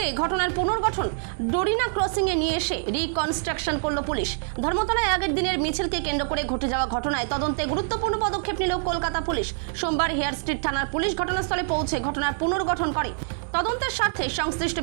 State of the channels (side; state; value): left; silent; 61 dB below the other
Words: ঘটনার পুনর্গঠন ডোরিনা ক্রসিংয়ে নিয়ে এসে রিকনস্ট্রাকশন করল পুলিশ। ধর্মতলায় আগের দিনের মিছিলকে কেন্দ্র করে ঘটে যাওয়া ঘটনায় তদন্তে গুরুত্বপূর্ণ পদক্ষেপ নিল কলকাতা পুলিশ। সোমবার হেয়ার স্ট্রিট থানার পুলিশ ঘটনাস্থলে পৌঁছে ঘটনার পুনর্গঠন করে। তদন্তের স্বার্থে সংশ্লিষ্ট